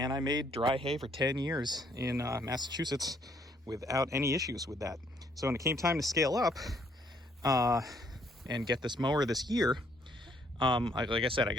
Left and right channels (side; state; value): both; normal; correlation 0.67